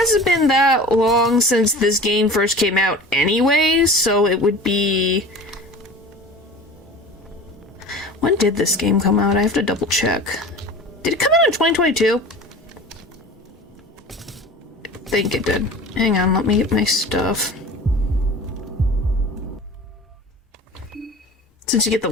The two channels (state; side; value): normal; both; correlation 0.38